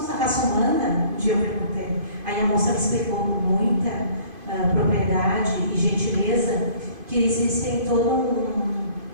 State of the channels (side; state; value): left; late; 2.5 ms